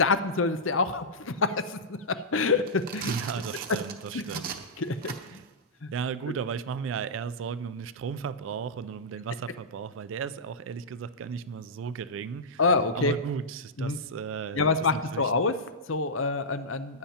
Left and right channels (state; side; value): normal; both; correlation -0.11